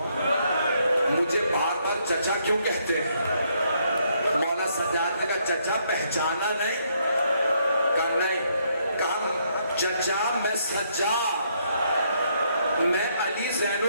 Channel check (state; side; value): inverted; both; correlation -0.72